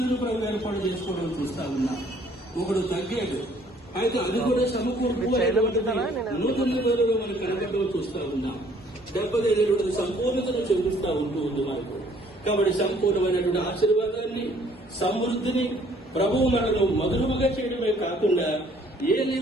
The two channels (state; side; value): normal; both; correlation 0.60